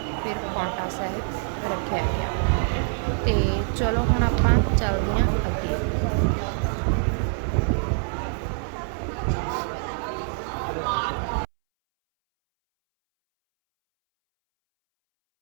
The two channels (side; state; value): left; silent; 62 dB below the other